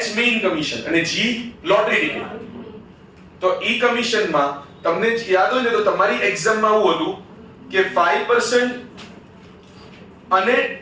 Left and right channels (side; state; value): both; identical; correlation 1.00